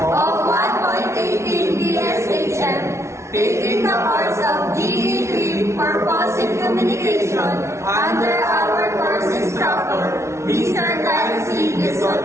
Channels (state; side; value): late; left; 0.13 ms